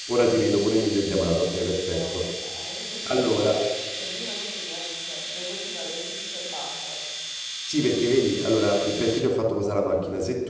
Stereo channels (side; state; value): both; identical; correlation 1.00